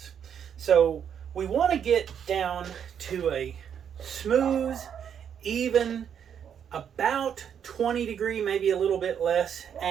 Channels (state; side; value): quieter; left; 8.3 dB